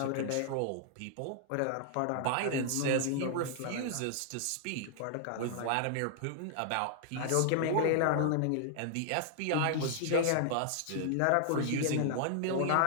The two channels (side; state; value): both; different; correlation -0.01